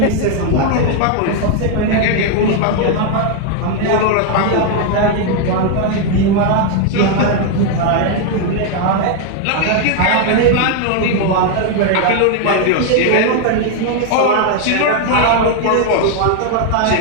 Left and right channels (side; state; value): both; different; correlation 0.01